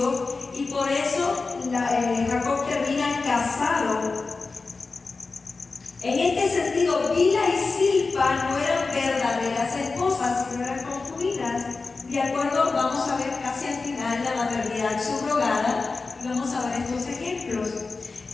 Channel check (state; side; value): quieter; right; 4.0 dB